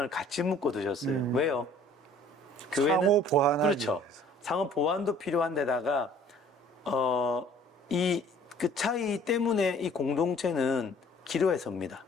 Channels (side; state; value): both; normal; correlation 0.54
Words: 같이 묶어 두셨어요. 왜요? 상호 보완하기 그렇죠. 위해서. 상호 보완도 필요한 데다가 그 차이 때문에 이 공동체는 기로에 섭니다.